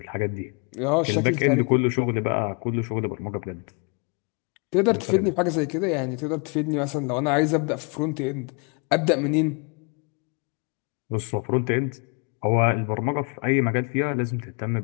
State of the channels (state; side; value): quieter; right; 35.1 dB